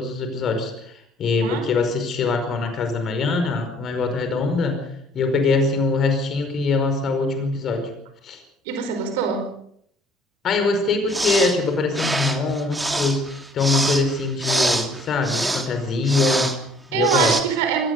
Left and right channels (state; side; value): normal; both; correlation 0.57